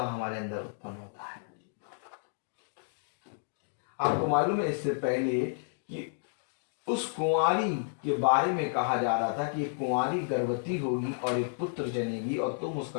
हमारे अंदर उत्पन्न होता है। आपको मालूम है इससे पहले कि उस कुंवारी के बारे में कहा जा रहा था कि एक कुंवारी गर्भवती होगी और एक पुत्र जनेगी और तुम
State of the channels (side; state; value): right; silent; digital silence